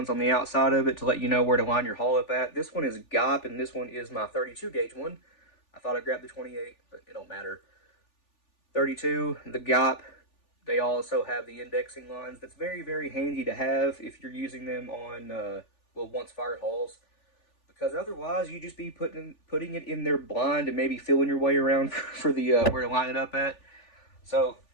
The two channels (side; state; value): right; late; 3.4 ms